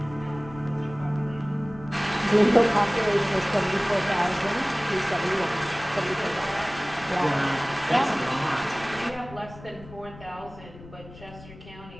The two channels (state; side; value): noise; left; rumble, 18 dB below the sound